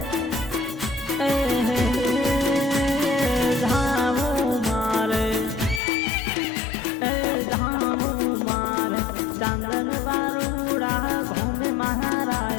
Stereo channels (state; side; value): drops out; right; at 5.8 s